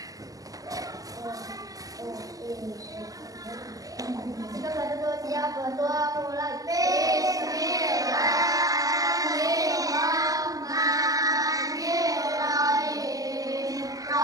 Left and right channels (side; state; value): left; late; 0.17 ms